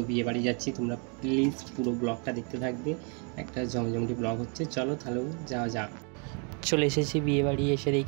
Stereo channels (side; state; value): left; quieter; 37.2 dB